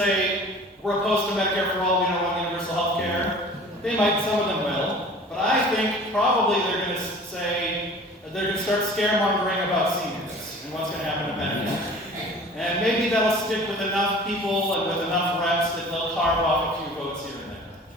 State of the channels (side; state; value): both; normal; correlation 0.44